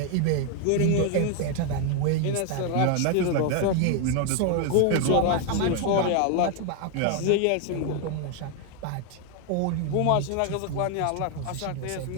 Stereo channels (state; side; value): different; both; correlation 0.00